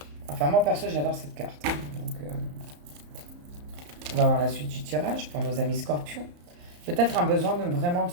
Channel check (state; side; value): late; left; 34 ms